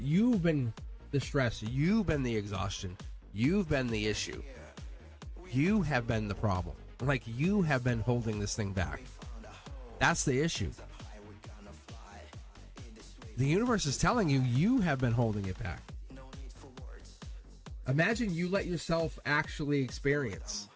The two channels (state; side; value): identical; both; correlation 1.00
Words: been the stress. You've been the exhaustion. You've been the issue. You have been the problem. Like, you have been holding this thing back. That's the issue. The universe is telling you you have been holding it back. Imagine you let yourself actually experience